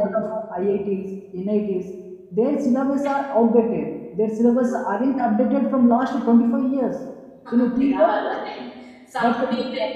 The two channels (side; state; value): both; identical; correlation 1.00